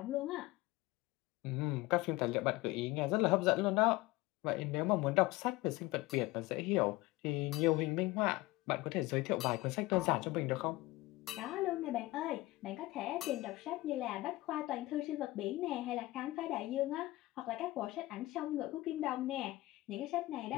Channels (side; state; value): right; quieter; 19.3 dB